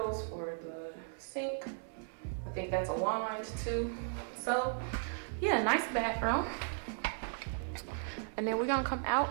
for the sink. I think that's a wand too. So, yeah, nice bathroom. And then we're gonna come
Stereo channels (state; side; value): silent; left; 54 dB below the other